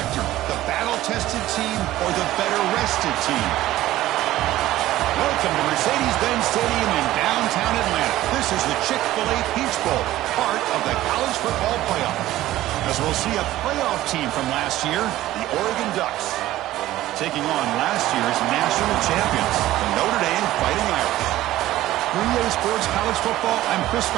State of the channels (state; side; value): quieter; left; 15.2 dB